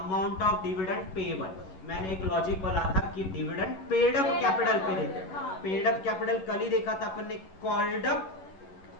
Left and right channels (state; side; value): late; right; 11 ms